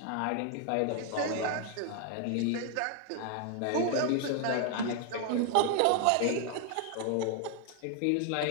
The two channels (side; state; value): both; different; correlation 0.00